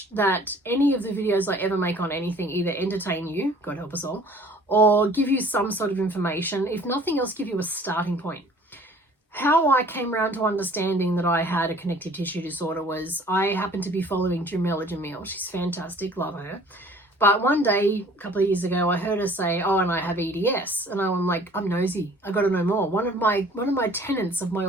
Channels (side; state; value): both; normal; correlation 0.52